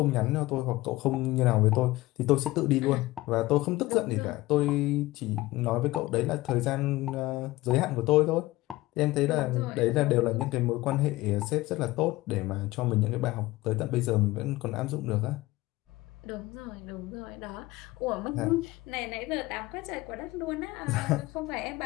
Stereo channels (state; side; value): quieter; right; 18.8 dB